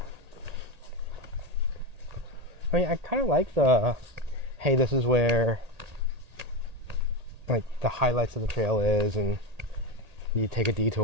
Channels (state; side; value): late; left; 1.8 ms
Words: I mean, I kind of like the, hey, this is where, like, the highlights of the trail is, and you take a